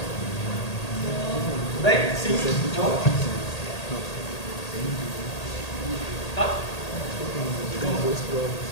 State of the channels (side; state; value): right; late; 1.8 ms